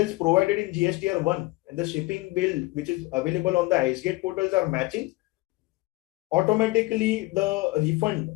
provided in GSTR 1 and the shipping bill which is available on the IceGate portals are matching, automatically the refund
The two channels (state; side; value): quieter; right; 21.8 dB